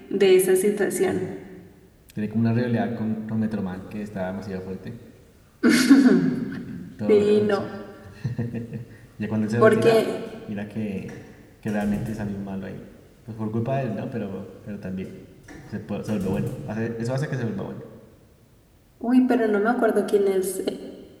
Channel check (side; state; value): both; identical; correlation 1.00